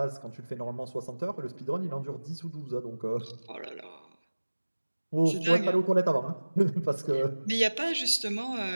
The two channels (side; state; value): both; inverted; correlation -1.00